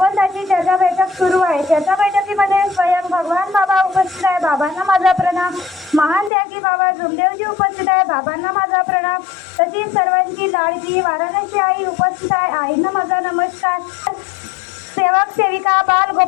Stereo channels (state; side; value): drops out; right; at 6.3 s